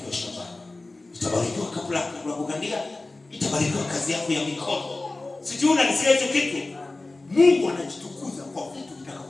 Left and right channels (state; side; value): quieter; right; 3.1 dB